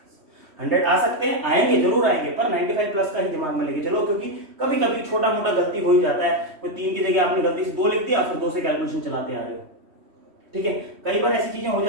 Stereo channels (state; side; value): late; left; 3.1 ms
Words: 100 आ सकते हैं, आएंगे जरूर आएंगे, पर 95+ का ही दिमाग में लेके चलो, क्योंकि कभी कभी छोटा मोटा गलती हो ही जाता है, कोई 3 की जगह आपने गलती से 2 लिख दिया, फिर 2 से कैलकुलेशन चलाते आ रहे हो। ठीक है, कई बार ऐसी चीजें हो